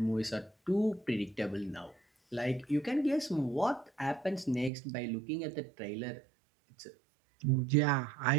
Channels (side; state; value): left; drops out; at 4.7 s